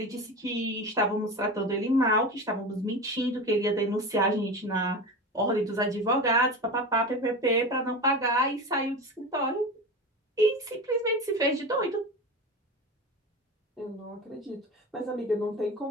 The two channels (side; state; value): both; normal; correlation 0.27